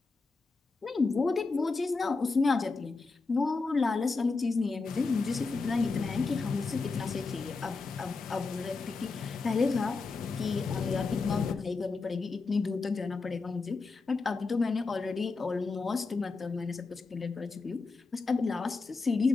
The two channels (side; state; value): right; quieter; 4.1 dB